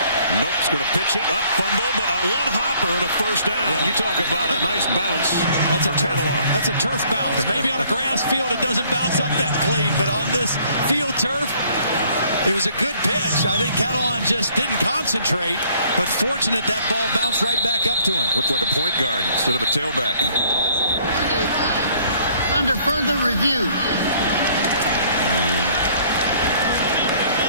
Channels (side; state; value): both; inverted; correlation -0.61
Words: Nope's going to pitch it up, fumble, but a 1-hopper and a first down. Yeah. You talk about a nice bounce. That's a turf bounce. Maybe on a grass field it doesn't bounce up that clean, but on this field turf, it was a good pitch. I think Catalan just didn't concentrate, but fortunate that ball bounced right back up to him. Looked like a point guard instead of a tailback. Under further review.